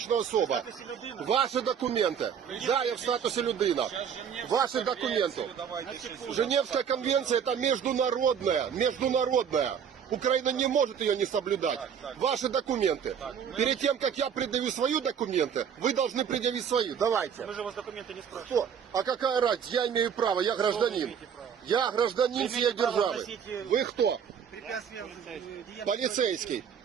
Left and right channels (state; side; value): quieter; left; 7.7 dB